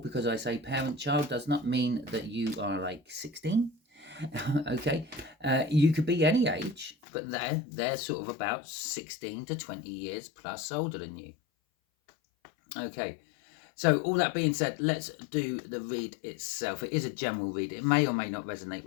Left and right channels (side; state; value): right; drops out; at 7.0 s